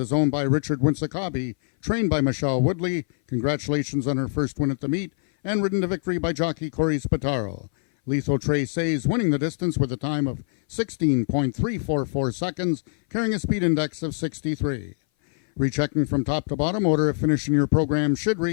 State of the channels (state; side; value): silent; right; 58 dB below the other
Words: owned by Richard Winsakabi, trained by Michelle Woodley. Congratulations on her first win at the meet, and ridden to victory by jockey Corey Spataro. Lethal Traces winning the distance with a time of 16.344 seconds, carrying a speed index of 63. Rechecking from top to bottom, order of finish in your program should